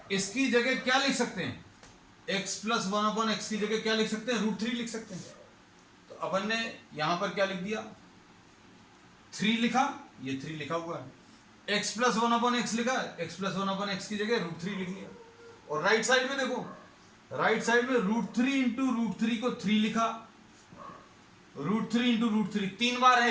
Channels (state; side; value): identical; both; correlation 1.00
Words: इसकी जगह क्या लिख सकते हैं, x प्लस 1/x की जगह क्या लिख सकते हैं, √3 लिख सकते हैं। तो अपन ने यहां पर क्या लिख दिया, 3 लिखा, ये 3 लिखा हुआ है, x प्लस 1/x लिखा है, x प्लस 1/x की जगह √3 लिख लिया। और राइट साइड में देखो, राइट साइड में √3 इंटू √3 को 3 लिखा, √3 इंटू √3 3 बार